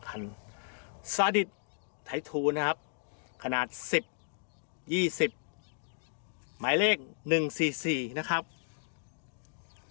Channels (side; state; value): right; silent; digital silence